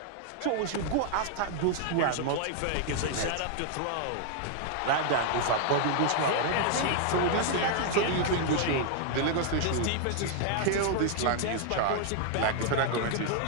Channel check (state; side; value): different; both; correlation 0.00